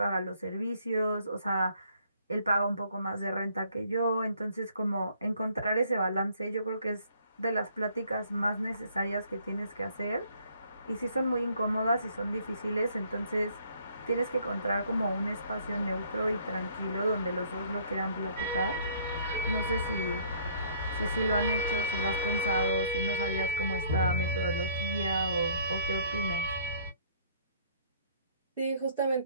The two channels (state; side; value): inverted; both; correlation -0.61